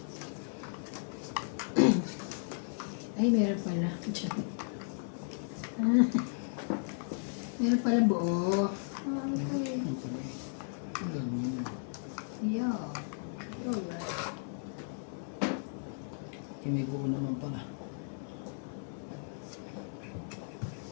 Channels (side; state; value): right; silent; digital silence